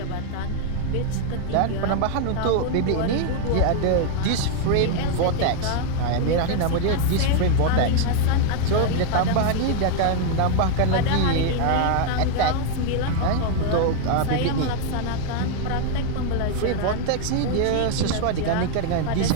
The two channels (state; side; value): different; both; correlation 0.00